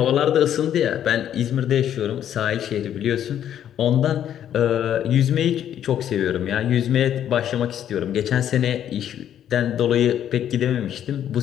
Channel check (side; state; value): right; quieter; 10.3 dB